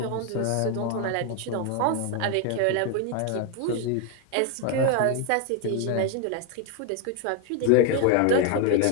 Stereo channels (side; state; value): both; different; correlation 0.01